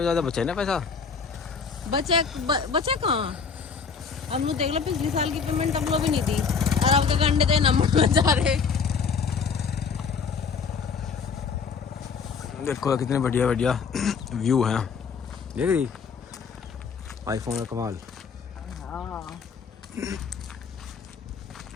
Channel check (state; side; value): quieter; right; 5.7 dB